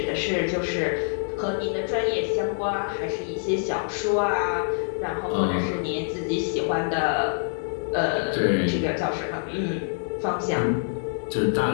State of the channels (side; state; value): right; silent; 61 dB below the other